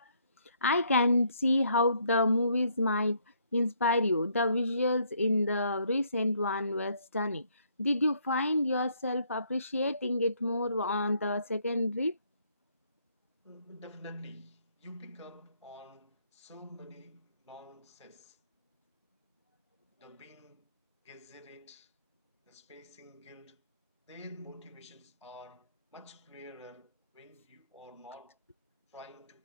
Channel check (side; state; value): both; inverted; correlation -0.68